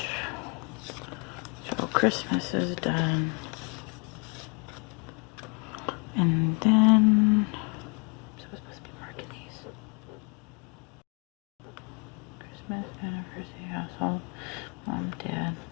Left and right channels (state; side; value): quieter; right; 32.6 dB